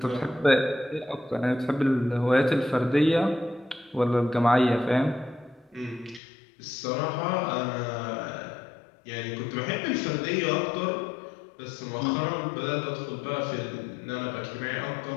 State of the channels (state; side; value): drops out; right; at 6.2 s